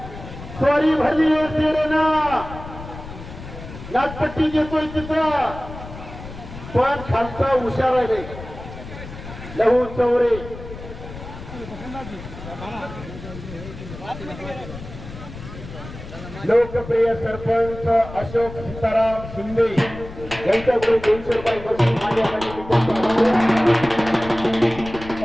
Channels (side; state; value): left; noise; rumble, 13 dB below the sound